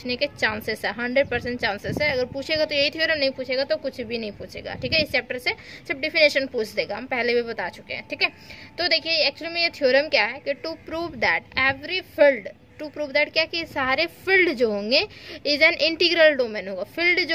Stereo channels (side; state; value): both; identical; correlation 1.00